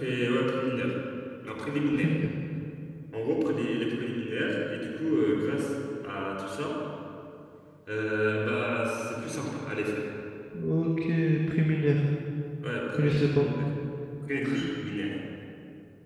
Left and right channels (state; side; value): identical; both; correlation 1.00